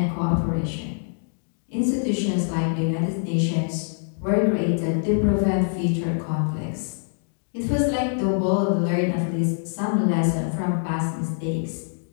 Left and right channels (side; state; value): right; silent; digital silence